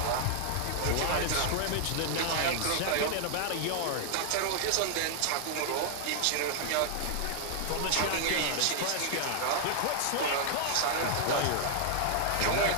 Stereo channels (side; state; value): both; different; correlation -0.01